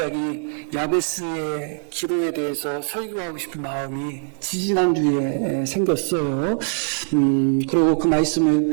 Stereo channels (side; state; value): left; silent; digital silence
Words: 야베스의 기도에 대해서 설교하고 싶은 마음이 지지난주에 생겼어요. 그리고 그